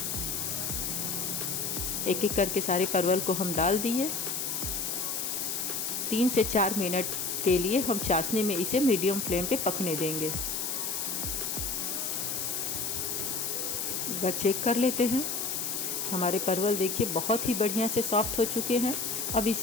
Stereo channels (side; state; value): left; noise; hiss, 1 dB below the sound